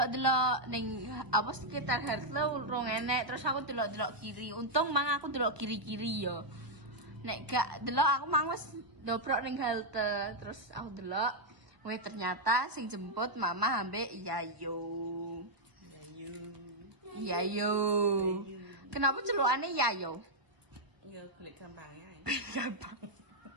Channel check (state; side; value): late; left; 1.2 ms